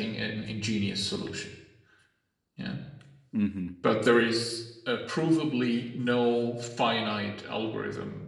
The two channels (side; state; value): both; identical; correlation 1.00